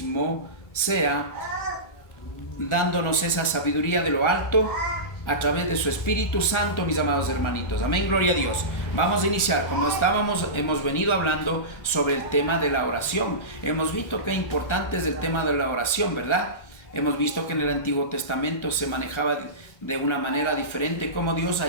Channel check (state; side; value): late; right; 1.4 ms